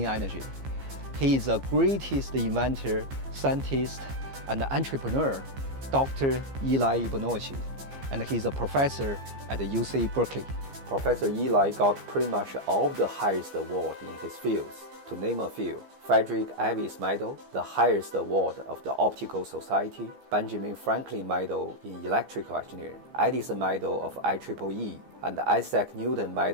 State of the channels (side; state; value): left; late; 15 ms